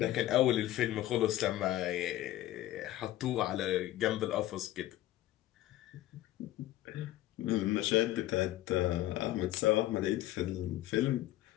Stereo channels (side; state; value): right; quieter; 14.7 dB